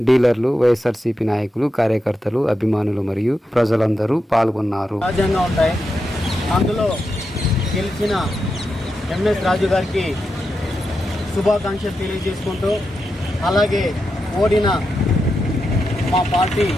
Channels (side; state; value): both; normal; correlation 0.87